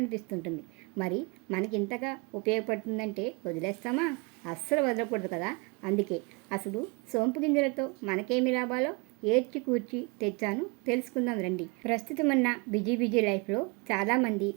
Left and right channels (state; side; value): quieter; left; 29.4 dB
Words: మరి మనకి ఇంతగా ఉపయోగపడుతుందంటే వదిలేస్తామా? అస్సలు వదలకూడదు కదా. అందుకే అసలు సోంపు గింజలతో మనకేమి లాభాలో ఏర్చి కూర్చి తెచ్చాను, తెలుసుకుందాం రండి. ప్రస్తుతం ఉన్న బిజీ లైఫ్లో చాలామంది